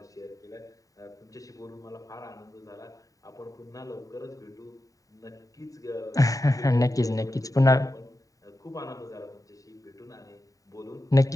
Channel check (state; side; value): late; right; 0.16 ms